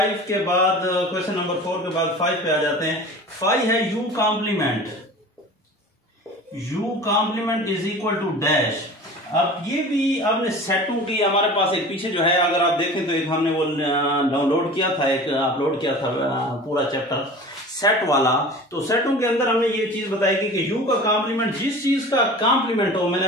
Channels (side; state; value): both; normal; correlation 0.38